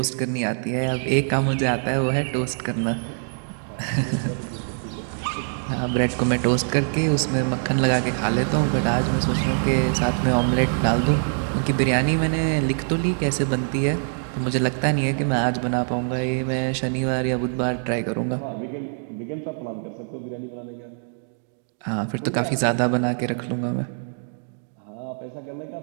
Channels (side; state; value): left; silent; digital silence